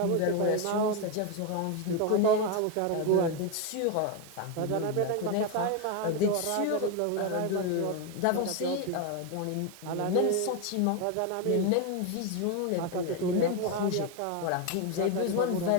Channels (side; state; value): both; different; correlation 0.02